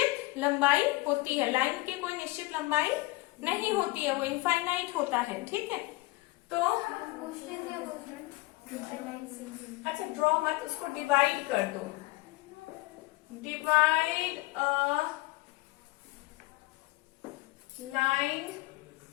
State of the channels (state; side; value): quieter; right; 21.4 dB